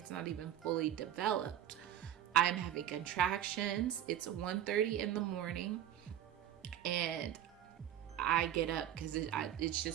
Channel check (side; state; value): left; quieter; 11.1 dB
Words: not even fully developed. I'm having contractions. It's 1:30 in the morning, and I get up because it's